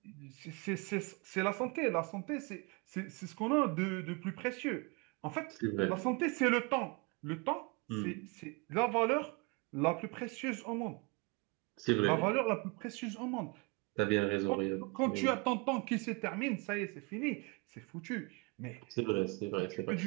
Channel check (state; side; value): quieter; left; 29.1 dB